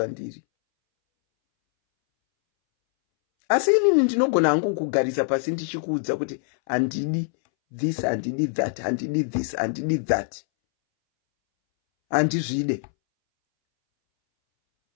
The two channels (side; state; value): right; silent; 63 dB below the other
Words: Asi inini ndinogona hangu kugarisa pasi ndichikuudza kuti handidi this, handidi that, handidi this, handidi that. Handizvide.